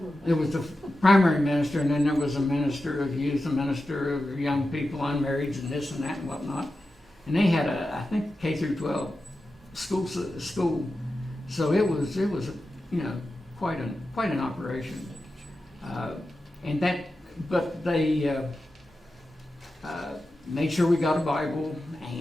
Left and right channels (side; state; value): both; normal; correlation 0.92